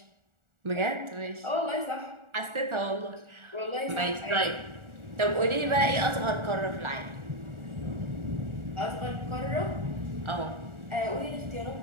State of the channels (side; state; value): left; late; 1.4 ms